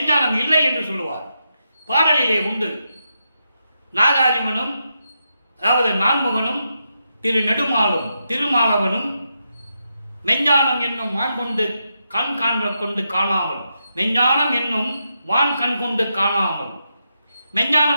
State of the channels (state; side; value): inverted; both; correlation -0.84